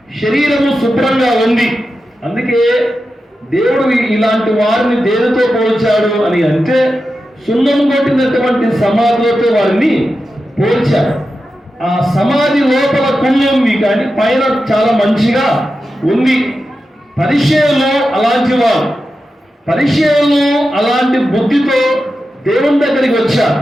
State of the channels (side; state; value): both; normal; correlation 0.91